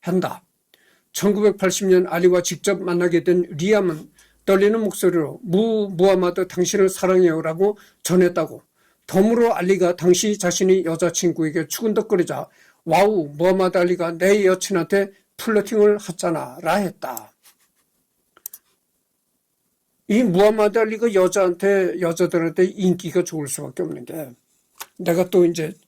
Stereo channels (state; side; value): identical; both; correlation 1.00